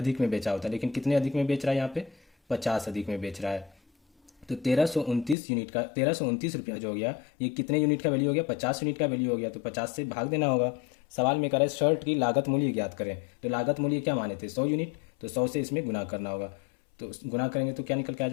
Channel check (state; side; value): drops out; right; at 5.4 s